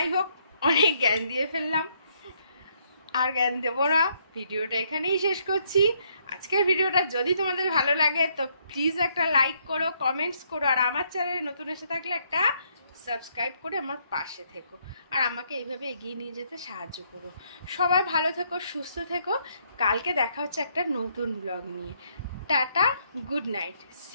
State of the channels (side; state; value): both; inverted; correlation -0.71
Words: হোক, অনেক জ্ঞান দিয়ে ফেললাম, আর জ্ঞান দেবো না, ভিডিওটা এখানেই শেষ করছি। আজকের ভিডিওটা যদি তোমাদের ভালো লাগে তো প্লিজ একটা লাইক করো, কমেন্টস করো, আর আমার চ্যানেলে নতুন এসে থাকলে একটা সাবস্ক্রাইব করে আমার পাশে থেকো, আর আমাকে এইভাবে এগিয়ে নিয়ে যেতে সাহায্য করো। সবাই ভালো থেকো, সুস্থ থেকো। কালকে দেখা হচ্ছে একটা নতুন ব্লগ নিয়ে। Tata, good night,